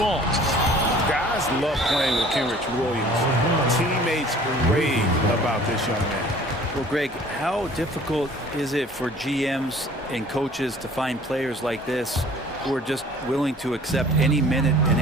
Guys love playing with Kenrich Williams. Teammates rave about this young man. Well, Greg, how difficult is it for GMs and coaches to find players like this who are just willing to accept any minute and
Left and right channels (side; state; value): both; normal; correlation 0.50